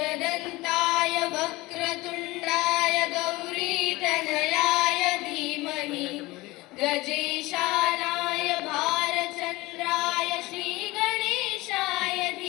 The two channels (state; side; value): quieter; right; 20.7 dB